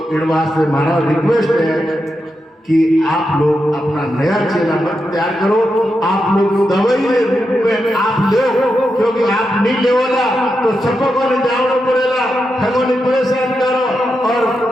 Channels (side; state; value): both; normal; correlation 0.87